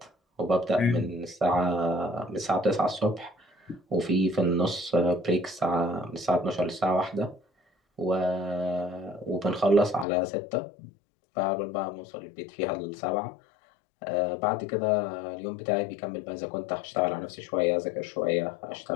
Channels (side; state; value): right; drops out; at 10.1 s